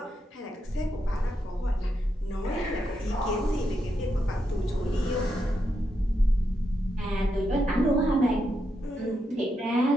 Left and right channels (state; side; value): normal; both; correlation 0.83